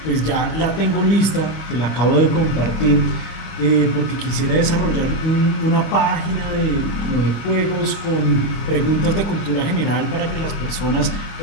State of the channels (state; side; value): late; right; 25 ms